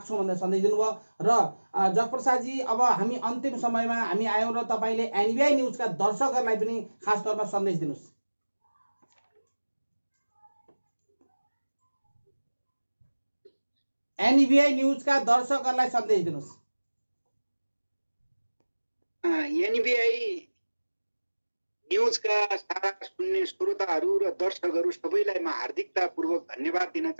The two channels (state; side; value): inverted; both; correlation -1.00